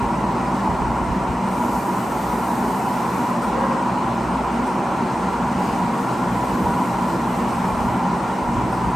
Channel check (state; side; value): normal; both; correlation 0.93